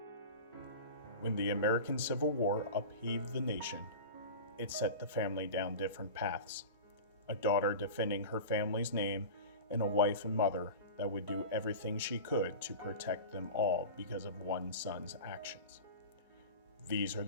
When the American Civil War upheaved the nation, it set the family down different paths. A daughter defending her family's name, and a wife and mother that would do everything she could to protect them all because of one son's actions. These are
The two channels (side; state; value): both; inverted; correlation -0.31